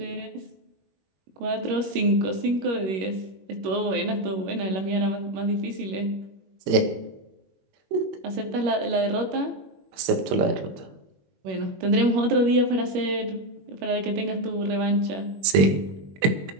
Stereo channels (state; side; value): late; left; 21 ms